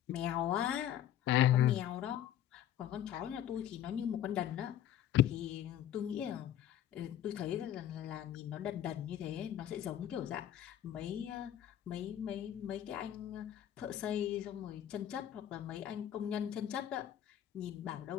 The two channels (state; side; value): quieter; right; 11.2 dB